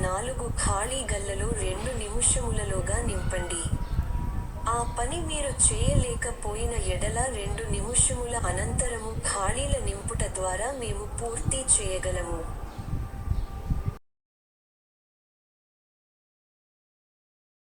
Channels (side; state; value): both; identical; correlation 1.00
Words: 4 ఖాళీ గళ్లలో 2 నిముషములలోగా నింపండి. ఆ పని మీరు చేయలేకపోయిన ఎడల 2 నిముషముల అనంతరము ఖాళీల నింపుట ద్వారా మేము పూర్తి చేయగలము.